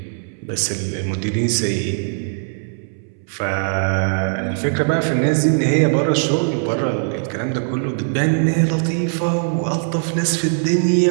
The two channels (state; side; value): silent; left; 66 dB below the other